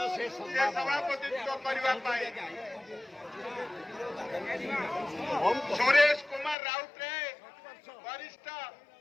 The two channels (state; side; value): drops out; right; at 6.6 s